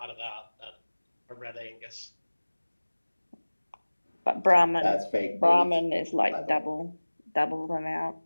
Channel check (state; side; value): inverted; both; correlation -1.00